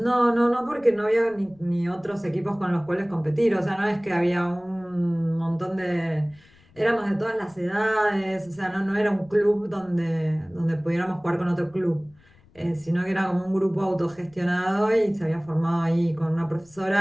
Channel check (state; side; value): noise; left; rumble, 29 dB below the sound